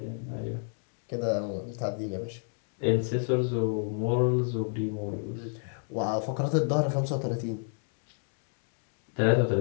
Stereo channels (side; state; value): right; silent; 58 dB below the other